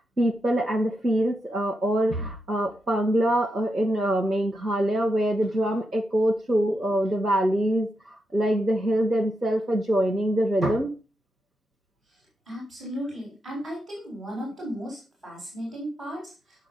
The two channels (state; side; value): normal; both; correlation 0.85